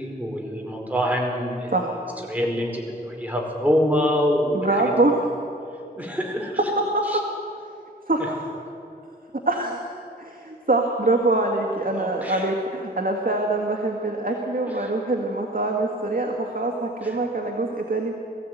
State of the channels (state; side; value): normal; both; correlation 0.44